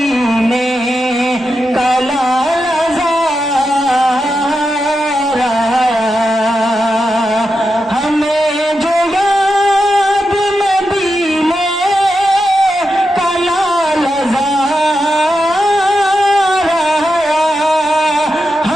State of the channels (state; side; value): normal; both; correlation 0.88